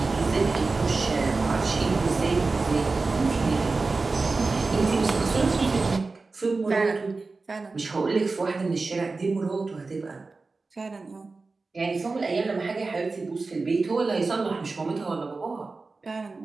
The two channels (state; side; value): quieter; left; 3.8 dB